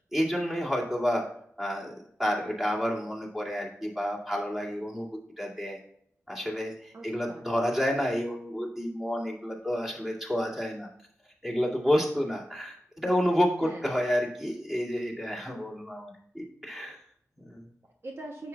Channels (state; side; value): normal; both; correlation 0.93